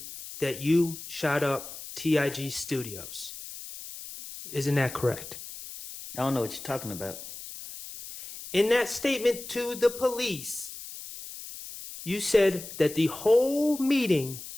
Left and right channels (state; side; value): noise; left; hiss, 12 dB below the sound